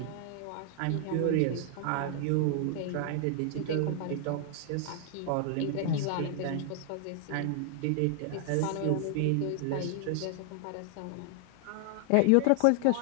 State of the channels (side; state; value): both; different; correlation 0.00